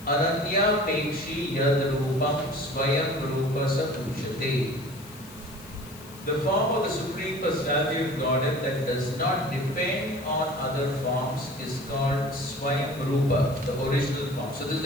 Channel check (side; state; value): left; noise; hiss, 20 dB below the sound